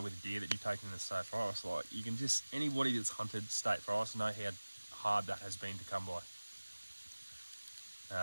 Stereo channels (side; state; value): both; inverted; correlation -1.00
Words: with a deer that you've taken in the state forest, like, you can just, anybody that's hunted state forest know how hard that has been to come by.